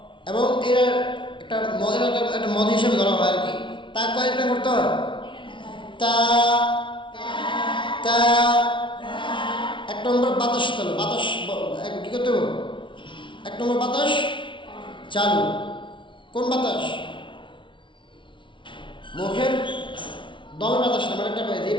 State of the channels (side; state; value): right; late; 0.24 ms